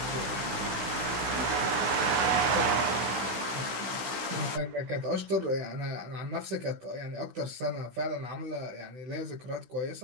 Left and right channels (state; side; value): late; left; 16 ms